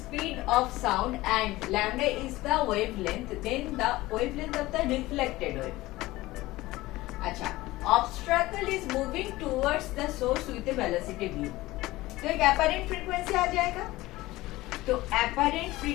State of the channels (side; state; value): right; quieter; 18.5 dB